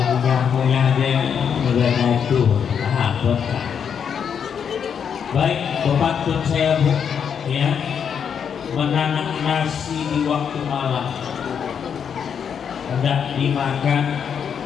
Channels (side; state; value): right; quieter; 7.5 dB